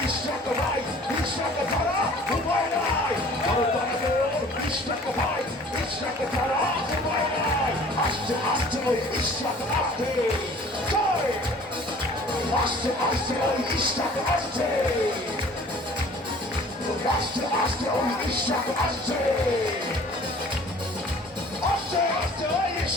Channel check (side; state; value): both; normal; correlation 0.49